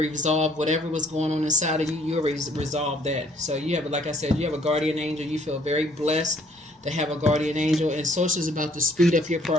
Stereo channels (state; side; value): normal; both; correlation 0.62